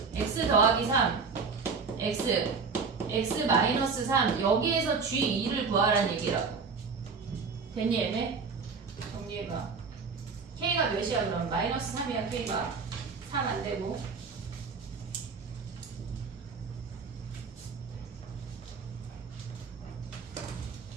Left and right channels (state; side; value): quieter; left; 5.1 dB